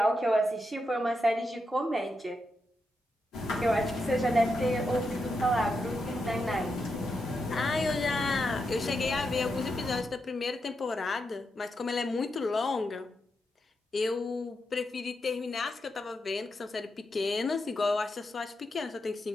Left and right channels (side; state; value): both; normal; correlation 0.85